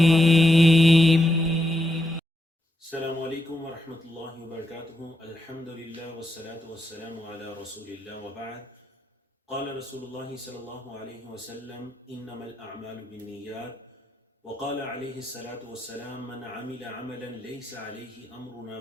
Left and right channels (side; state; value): both; normal; correlation 0.83